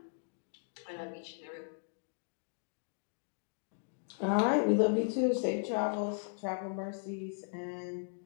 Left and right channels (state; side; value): silent; right; digital silence